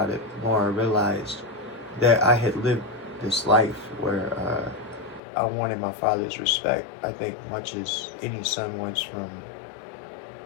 it, the more I realized that I had lived this life where I wanted my father's respect. I think much as any son wants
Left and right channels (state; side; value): drops out; right; at 5.2 s